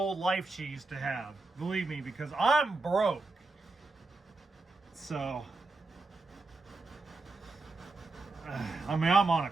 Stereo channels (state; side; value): quieter; left; 3.5 dB